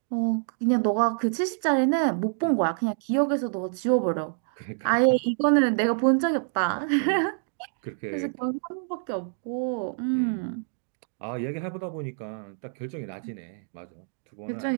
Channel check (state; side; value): silent; left; digital silence